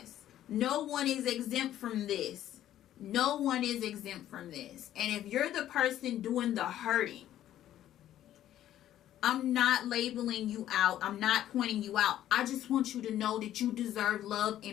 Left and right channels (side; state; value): right; quieter; 12.3 dB